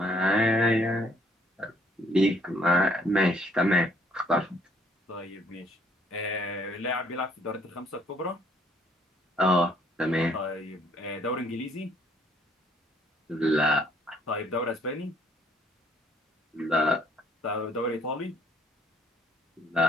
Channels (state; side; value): normal; both; correlation 0.64